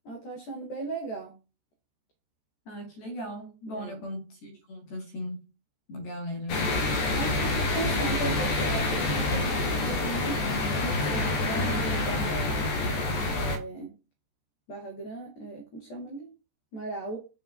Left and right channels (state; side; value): late; right; 14 ms